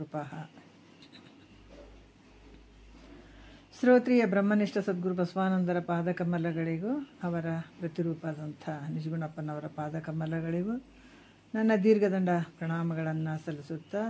ಶ್ರೋತ್ರಿಯ ಬ್ರಹ್ಮನಿಷ್ಠ ಸದ್ಗುರು ಬಸವಾನಂದರ ಪಾದಕಮಲಗಳಿಗೂ ಅವರ ಪ್ರತಿರೂಪದಂಥ ನಿಜಗುಣಪ್ಪನವರ ಪಾದಕಮಲಗಳಿಗೂ ನನ್ನ ದೀರ್ಘದಂಡ ಪ್ರಣಾಮಗಳನ್ನು ಸಲ್ಲಿಸುತ್ತಾ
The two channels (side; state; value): both; identical; correlation 1.00